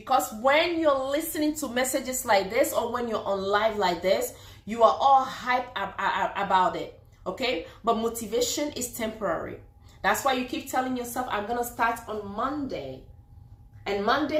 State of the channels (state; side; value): identical; both; correlation 1.00